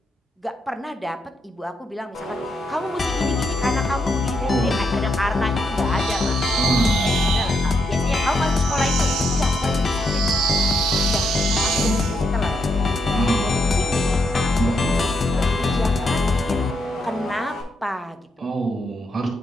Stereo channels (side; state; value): both; normal; correlation 0.79